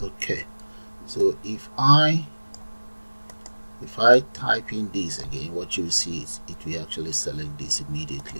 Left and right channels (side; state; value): both; inverted; correlation -1.00